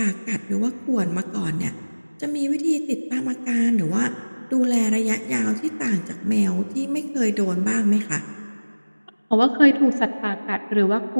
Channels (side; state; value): both; inverted; correlation -1.00